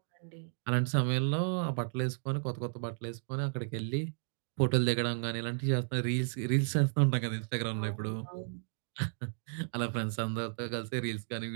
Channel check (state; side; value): silent; left; digital silence